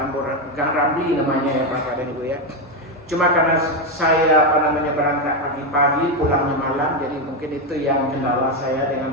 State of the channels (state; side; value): normal; both; correlation 0.08